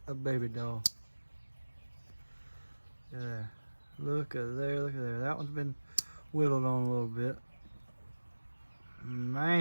a baby doll? Yeah. Look at there, look at there. That one's been whittled on a little bit.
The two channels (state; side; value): inverted; both; correlation -1.00